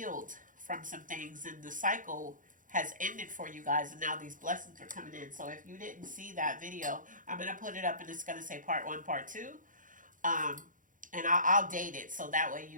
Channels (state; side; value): late; left; 0.38 ms